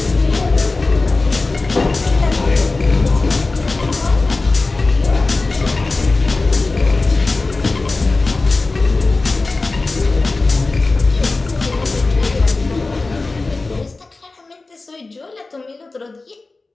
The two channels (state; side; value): quieter; right; 3.5 dB